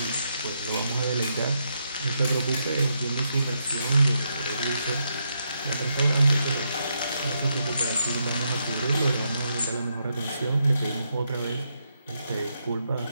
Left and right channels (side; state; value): both; inverted; correlation -0.80